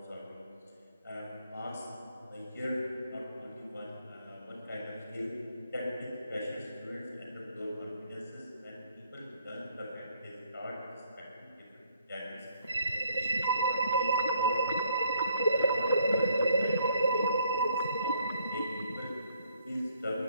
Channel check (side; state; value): both; inverted; correlation -0.67